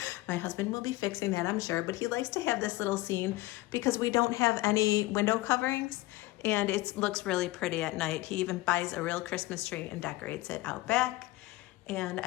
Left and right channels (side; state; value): right; quieter; 19.2 dB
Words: My husband will be fixing that, I'm sure, but he likes to have this little scene because we don't have any window coverings, and it looks really pretty at night. He even buys a real Christmas tree and decorates it out back. And